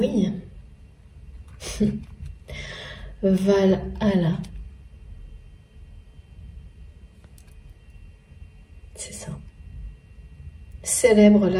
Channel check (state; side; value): identical; both; correlation 1.00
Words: Valhalla. C'est ça. Célèbre